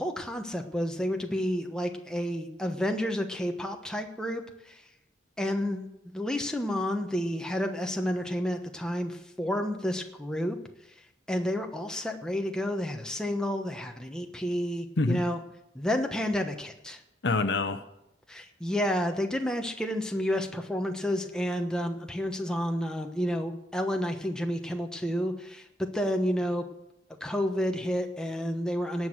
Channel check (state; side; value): normal; both; correlation 0.80